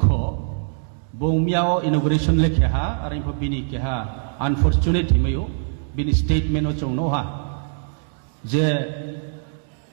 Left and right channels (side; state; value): left; silent; digital silence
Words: बो मियाओ इनॉग्रेशन लेखे हा और इनफो बिनी के हा अनफॉर्चुनेट हिमयो बिनी स्टेटमेंट चौनो हा जे